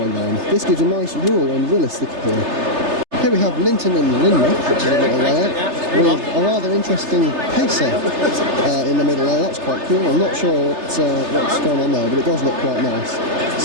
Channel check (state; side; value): late; left; 3.3 ms